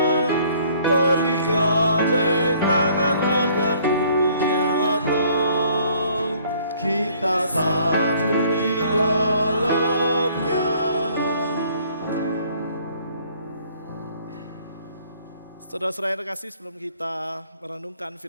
mari gandeng tangan agar dunia tahu kita satu di dalamnya. Saudara-saudara yang terkasih, sebelum kita merenungkan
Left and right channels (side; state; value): both; inverted; correlation -0.59